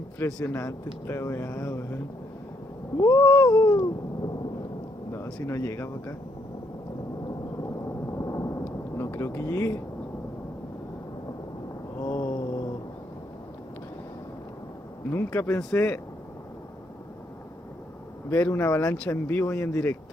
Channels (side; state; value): both; normal; correlation 0.74